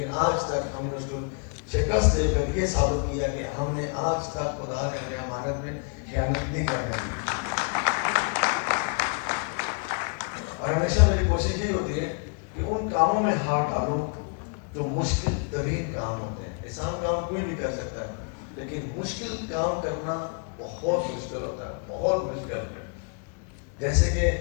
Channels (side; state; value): right; quieter; 39.0 dB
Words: آج تک ہم نے اس کو شکست دے کر یہ ثابت کیا کہ ہم نے آج تک خدا کے امانت میں خیانت نہیں کرنے دی. اور ہمیشہ میری کوشش یہ ہوتی ہے کہ ان کاموں میں ہاتھ ڈالوں جو مشکل ترین کام ہوتے ہیں. آسان کام کوئی بھی کر سکتا ہے, لیکن مشکل کام کرنا بہت مشکل ہوتا ہے, بہت مشکل ہے. جیسے کہ